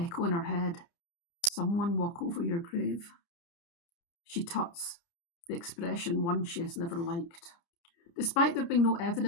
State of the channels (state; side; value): late; right; 30 ms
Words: in her head. Someone walk over your grave. She tuts, the expression one she has never liked. Despite there being no